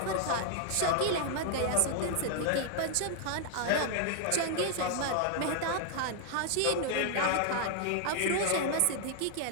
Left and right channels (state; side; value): different; both; correlation 0.00